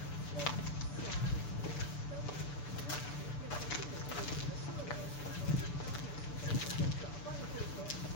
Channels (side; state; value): right; late; 6.8 ms